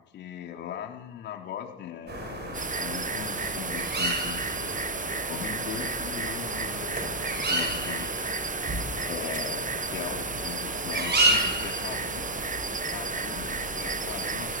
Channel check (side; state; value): both; normal; correlation -0.08